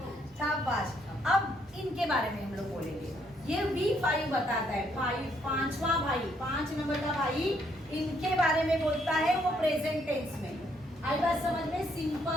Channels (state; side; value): normal; both; correlation 0.71